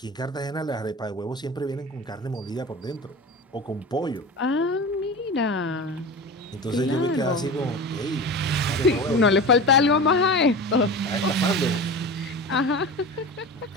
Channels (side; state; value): both; normal; correlation 0.30